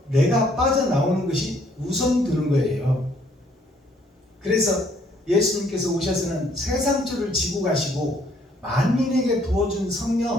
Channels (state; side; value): normal; both; correlation 0.65